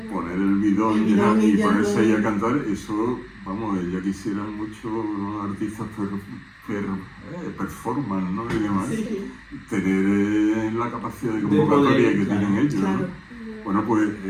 poner el bidón El bidón y y ya ponerse todo. ahí a cantar, eso, vamos, ya quisieran muchos artistas performance, ¿no? Y demás, Sí, tener la capacidad de poder, convocatoria que claro. tienen ellos, ¿no? claro. Bueno, pues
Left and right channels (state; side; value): identical; both; correlation 1.00